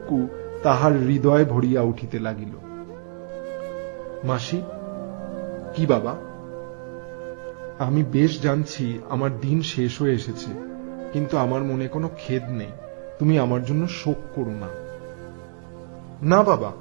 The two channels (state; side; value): silent; left; 62 dB below the other